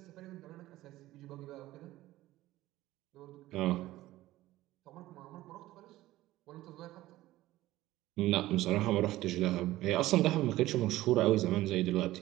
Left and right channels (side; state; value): left; quieter; 16.3 dB